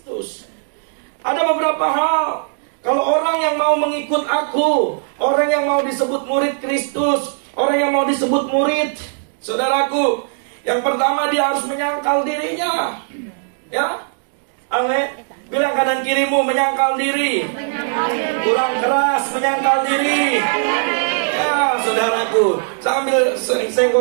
Ada beberapa hal. Kalau orang yang mau mengikut aku, orang yang mau disebut murid Kristus, orang yang mau disebut murid, saudaraku, yang pertama dia harus menyangkal dirinya. Ya, amin. Bilang kanan kirimu, menyangkal diri. Kurang keras, menyangkal diri. Ya, saudaraku, sambil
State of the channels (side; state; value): left; silent; digital silence